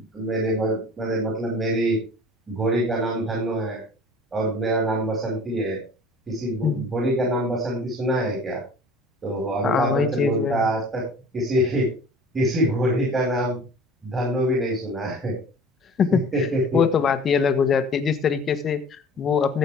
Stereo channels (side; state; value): both; normal; correlation 0.45